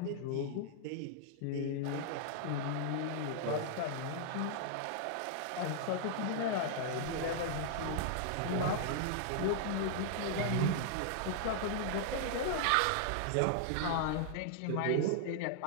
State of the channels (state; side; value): different; both; correlation -0.01